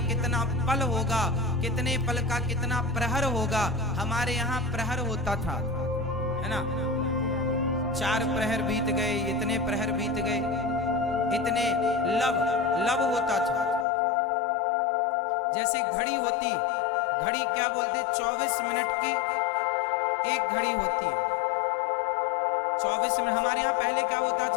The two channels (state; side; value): drops out; right; at 13.9 s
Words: कितना पल होगा, कितने पल का कितना प्रहर होगा। हमारे यहाँ प्रहर होता था, है ना, 4 प्रहर बीत गए, इतने प्रहर बीत गए, इतने लब होता था। जैसे घड़ी होती, घड़ी क्या बोलते, 24 मिनट की 1 घड़ी होती है। 24 मिनट हमारे यहाँ पहले क्या होता